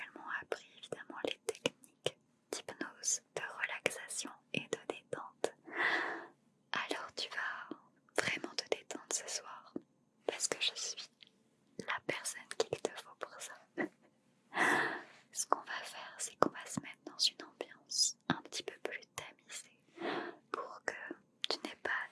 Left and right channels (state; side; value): identical; both; correlation 1.00